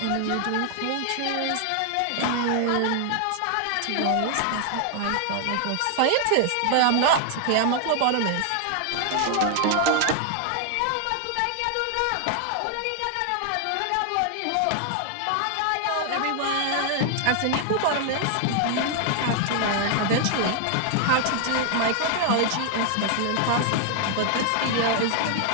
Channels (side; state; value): both; different; correlation 0.00